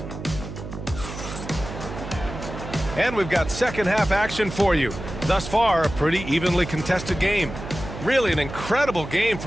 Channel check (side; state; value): right; noise; hum, 10 dB below the sound